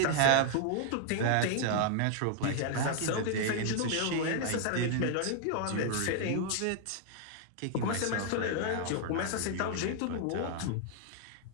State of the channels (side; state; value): both; different; correlation 0.00